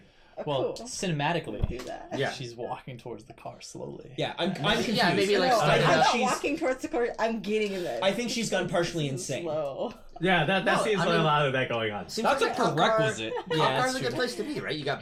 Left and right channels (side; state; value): both; identical; correlation 1.00